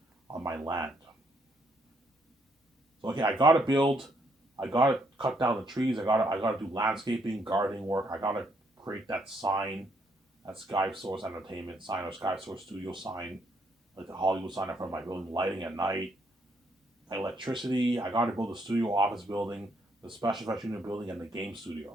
on my land. So okay, I gotta build, I gotta cut down the trees, I gotta do landscaping, gardening work, I gotta create that sign, that Sky Source Entertainment sign or Sky Source Studio sign, like the Hollywood sign in front of my building, lighting at night, electricity. I got to build a studio office building, the special effects unit building, and the game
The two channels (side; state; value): both; normal; correlation 0.72